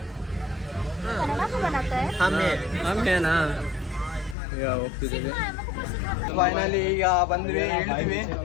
ಕನ್ನಡ ಬರುತ್ತೆ. ಆಮೇನಾ ಈಗ ಹೋಗ್ತಿದ್ದೀವಿ. ಫೈನಲಿ ಈಗ ಬಂದ್ವಿ, ಹೇಳ್ತೀವಿ.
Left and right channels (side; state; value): right; drops out; at 4.4 s